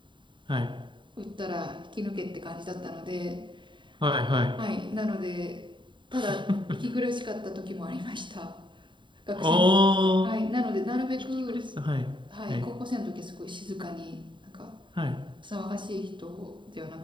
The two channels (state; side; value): late; left; 0.23 ms